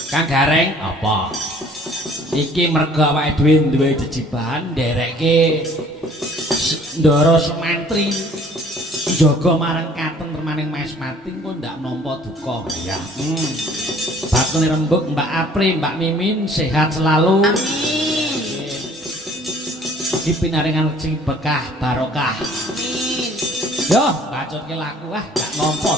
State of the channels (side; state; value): both; normal; correlation 0.55